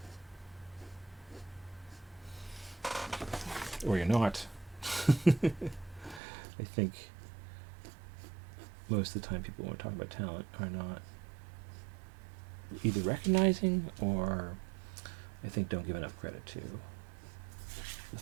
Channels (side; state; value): left; drops out; at 6.2 s